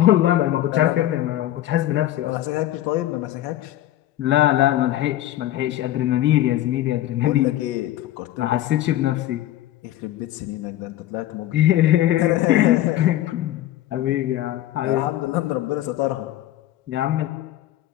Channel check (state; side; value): quieter; right; 13.8 dB